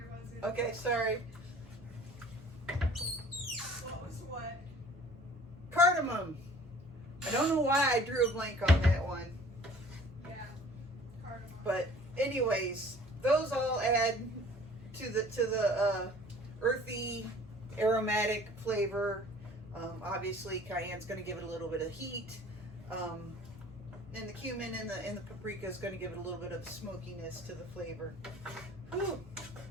in. Okay, sorry. What was what? Cardamom. I don't know why I drew a blank on that one. Yeah, cardamom. But anyways, those all add to the earthy, aromatic flavor. Obviously, cayenne's going to give it a little bit of heat, and the cumin and the paprika is going to give it a little bit of smokiness to the flavor. Whew.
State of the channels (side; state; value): both; normal; correlation 0.50